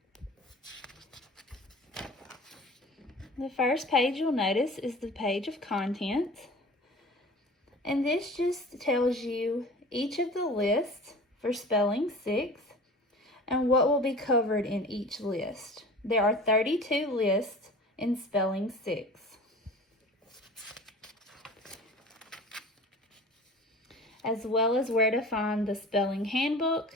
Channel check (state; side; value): normal; both; correlation 0.40